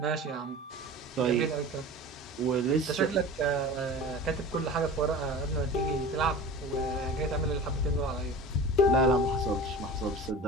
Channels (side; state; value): both; normal; correlation 0.36